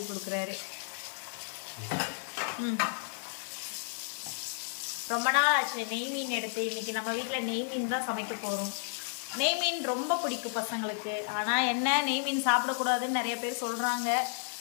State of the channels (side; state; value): right; silent; digital silence